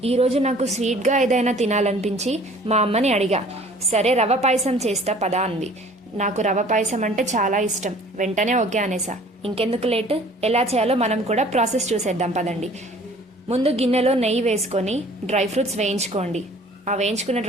ఈరోజు నాకు స్వీట్గా ఏదైనా తినాలనిపించి మా అమ్మని అడిగా. సరే రవ పాయసం చేస్తా పదా అంది. నాకు రవ పాయసం అంటే చాలా ఇష్టం. వెంటనే ఓకే అనేసా. ఇంకెందుకు లేట్, ఎలా చేయాలో మనం కూడా ప్రాసెస్ చూసేద్దాం పదండి. ముందు గిన్నెలో నెయ్యి వేసుకొని డ్రై ఫ్రూట్స్ వేయించుకోండి. ఆ వేయించుకున్న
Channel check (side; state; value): both; normal; correlation 0.51